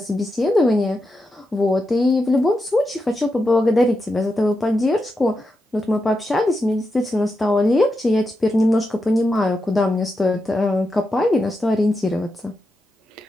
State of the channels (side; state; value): both; normal; correlation 0.87